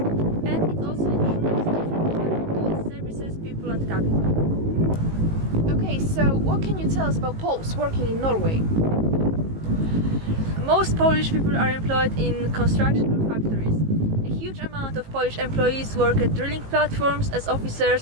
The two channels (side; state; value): left; late; 18 ms